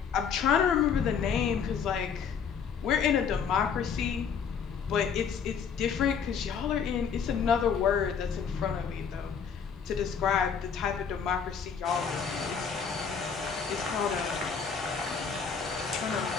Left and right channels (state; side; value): quieter; right; 6.7 dB